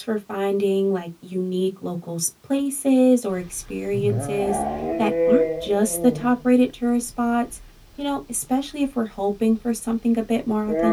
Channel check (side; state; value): both; identical; correlation 1.00